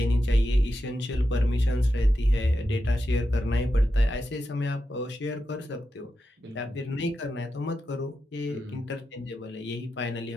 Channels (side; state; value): both; normal; correlation 0.88